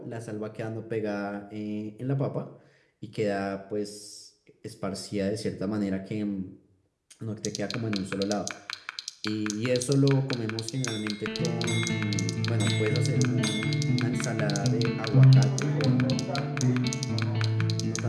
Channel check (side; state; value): both; identical; correlation 1.00